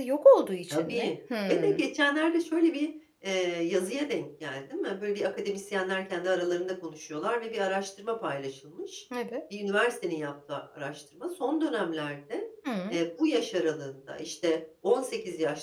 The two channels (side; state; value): both; identical; correlation 1.00